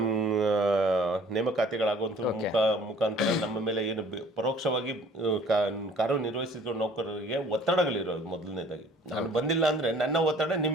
ನೇಮಕಾತಿಗಳಾಗುವಂಥ ಮುಖಾಂತರ ನಮ್ಮ ಮೇಲೆ ಏನು ಪರೋಕ್ಷವಾಗಿ ಕಾರ್ಯನಿರ್ವಹಿಸಿದ ನೌಕರರಿಗೆ ಒತ್ತಡಗಳಿರೋದು. ಮೊದಲನೇದಾಗಿ ನಾನು ಬಂದಿಲ್ಲ ಅಂದರೆ ನನ್ನ ಒತ್ತಡ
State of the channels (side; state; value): both; normal; correlation 0.53